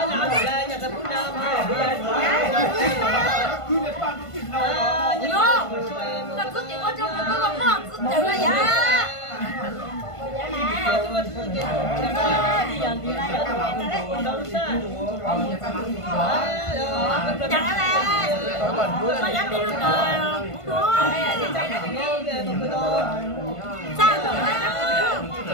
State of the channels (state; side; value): late; right; 1.5 ms